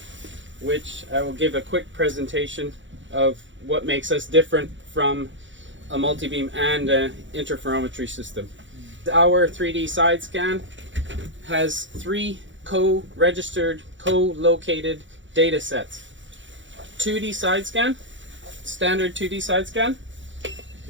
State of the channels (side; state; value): left; late; 0.55 ms